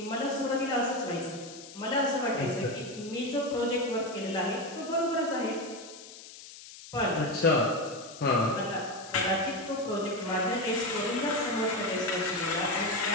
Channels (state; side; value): noise; left; hiss, 16 dB below the sound